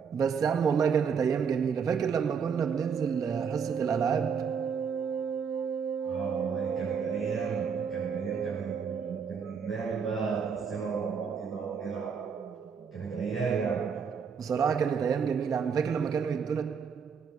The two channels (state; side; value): quieter; left; 6.4 dB